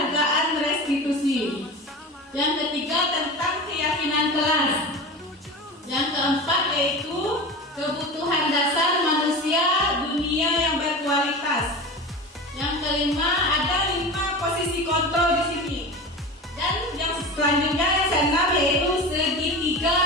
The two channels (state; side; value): normal; both; correlation 0.30